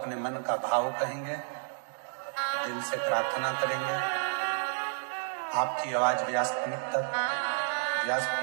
मन का भाव कहेंगे, दिल से प्रार्थना करेंगे। आपकी आवाज व्यासपीठ तक,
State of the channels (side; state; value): left; silent; digital silence